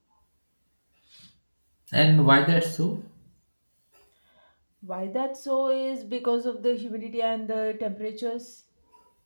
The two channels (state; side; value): inverted; both; correlation -1.00